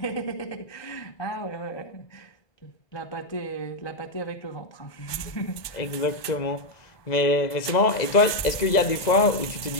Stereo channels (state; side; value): late; right; 1.2 ms